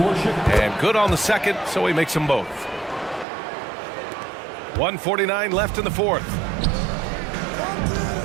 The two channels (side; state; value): left; drops out; at 3.2 s